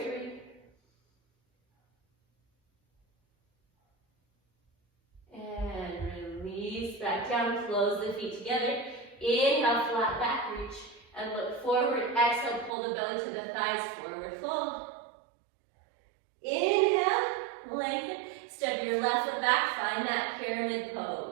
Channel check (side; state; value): left; drops out; at 12.7 s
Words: three. And release back down, close the feet together. Inhale, flat back reach. And look forward, exhale, pull the belly to the thighs, forward fold. Inhale, lengthen. Step your left foot back, find that pyramid